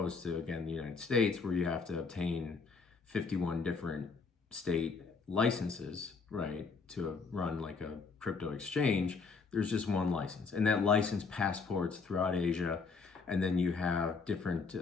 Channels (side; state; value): right; quieter; 4.8 dB